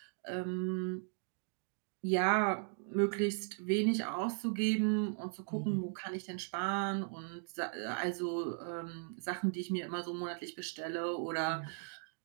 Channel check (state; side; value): silent; left; 53 dB below the other